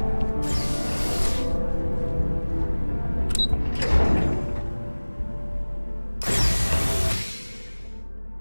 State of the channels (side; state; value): both; inverted; correlation -1.00